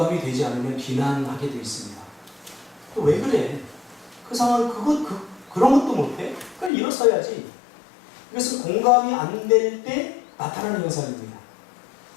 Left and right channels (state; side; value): drops out; right; at 6.7 s